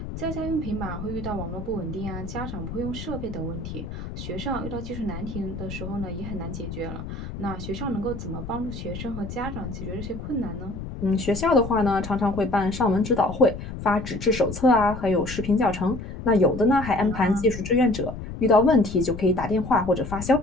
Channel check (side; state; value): left; noise; rumble, 9 dB below the sound